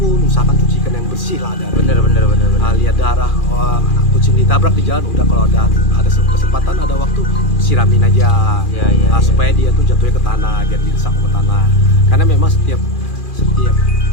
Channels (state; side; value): late; right; 2.4 ms